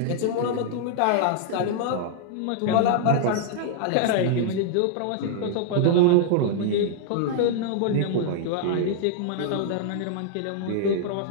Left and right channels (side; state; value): both; different; correlation -0.01